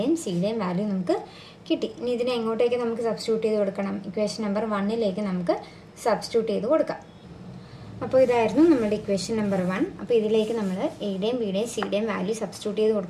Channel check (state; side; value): identical; both; correlation 1.00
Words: സിയുടെയും വാല്യൂ നമുക്ക് കിട്ടി. ഇനി ഇതിനെ എങ്ങോട്ടേക്ക് നമുക്ക് സബ്സ്റ്റിറ്റ്യൂട്ട് ചെയ്ത് കൊടുക്കണം, ഇക്വേഷൻ നമ്പർ 1ലേക്ക് നമുക്ക് സബ്സ്റ്റിറ്റ്യൂട്ട് ചെയ്ത് കൊടുക്കാം. അപ്പോൾ ഇതായിരുന്നു നമ്മുടെ ഇക്വേഷൻ നമ്പർ 1. അപ്പോൾ ഇതിലേക്ക് നമ്മൾ എയുടെയും ബിയുടെയും സിയുടെയും വാല്യൂ സബ്സ്റ്റിറ്റ്യൂട്ട് ചെയ്ത്